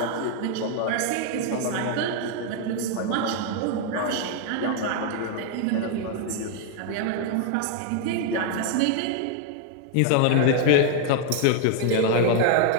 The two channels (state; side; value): different; both; correlation 0.00